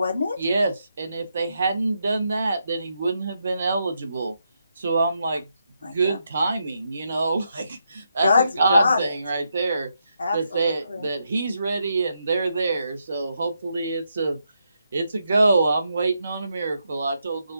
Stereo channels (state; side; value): inverted; both; correlation -0.81